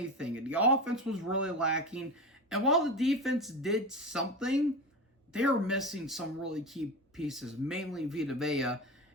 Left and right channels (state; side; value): normal; both; correlation 0.25